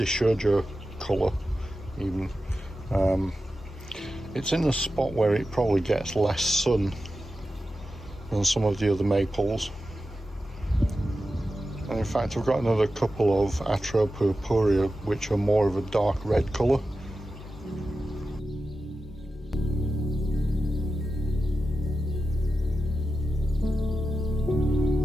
colour even. It's in a spot where it probably gets less sun than some of the other maples. And in fact I've got another couple of Atropurpurea which are more of a dark red colour.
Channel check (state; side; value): normal; both; correlation 0.92